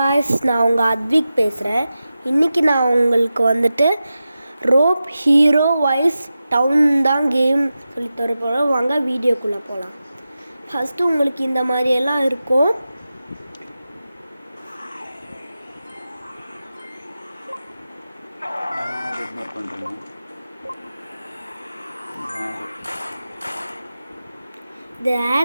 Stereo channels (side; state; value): both; inverted; correlation -0.93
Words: நான் உங்கள் அத்விக் பேசுகிறேன். இன்றைக்கி நான் உங்களுக்கு வந்துட்டு ரோப் ஹீரோ வைஸ் டவுன் தான் கேம் சொல்லித்தர போகிறோம். வாங்க வீடியோக்குள்ளே போகலாம். ஃபஸ்ட்டு உங்களுக்கு இந்த மாதிரியெல்லாம் இருக்கும். இந்த